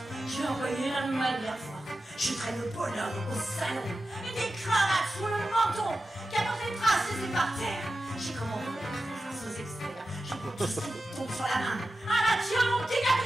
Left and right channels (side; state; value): both; normal; correlation 0.93